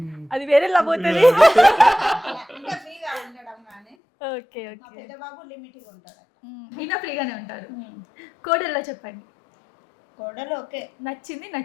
అది వేరే పోతుంది. ఇంకా ఫ్రీగా ఉండడం కానీ. ఓకే. మా ఓకే. పెద్ద బాబు లిమిట్గా ఉంటాడు. ఈయన ఫ్రీగానే ఉంటారు. కోడల్లో చెప్పండి. కోడలు ఓకే, నచ్చింది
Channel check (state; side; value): drops out; right; at 4.0 s